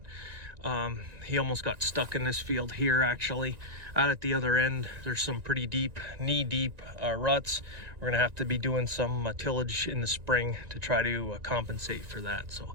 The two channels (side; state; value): left; late; 1.9 ms